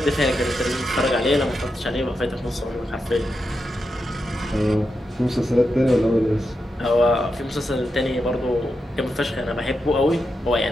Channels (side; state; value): both; normal; correlation 0.87